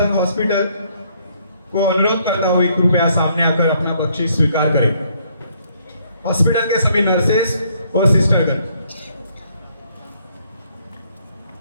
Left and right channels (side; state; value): both; inverted; correlation -0.68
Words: hospital को अनुरोध करता हूँ कृपया सामने आकर अपना बख्शीश स्वीकार करें। हॉस्पिटल के सभी नर्सेस और सिस्टरगण।